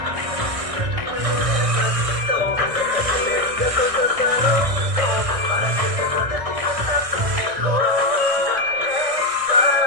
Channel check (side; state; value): left; late; 1.6 ms